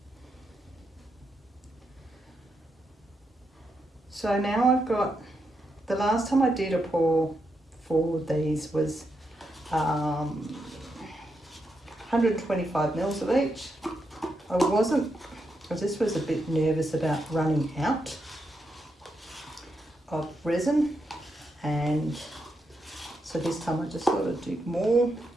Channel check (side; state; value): both; normal; correlation 0.83